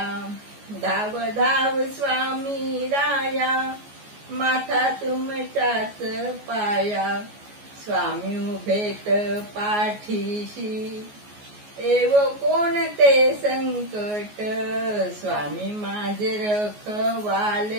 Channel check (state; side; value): late; left; 14 ms